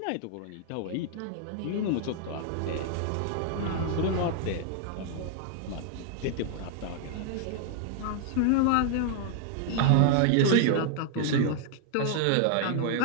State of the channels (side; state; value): both; different; correlation 0.00